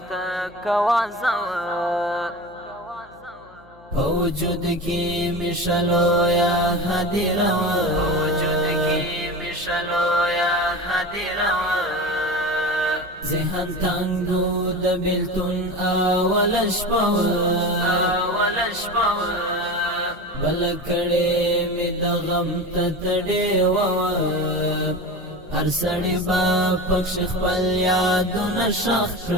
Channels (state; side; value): noise; left; hum, 26 dB below the sound